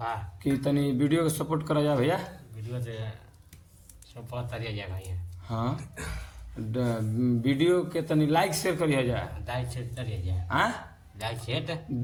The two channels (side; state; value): both; identical; correlation 1.00